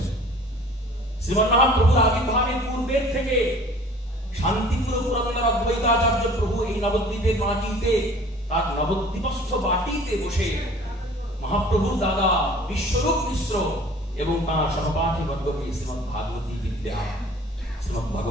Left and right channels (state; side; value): normal; both; correlation 0.49